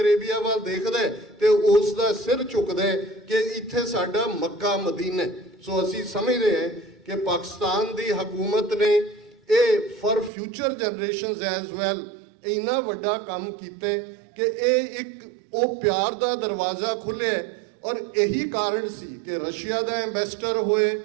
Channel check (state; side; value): drops out; left; at 10.3 s